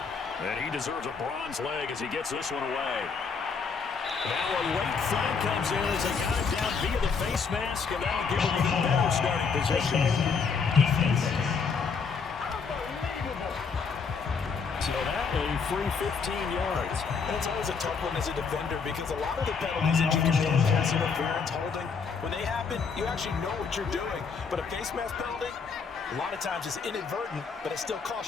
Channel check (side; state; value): right; quieter; 5.4 dB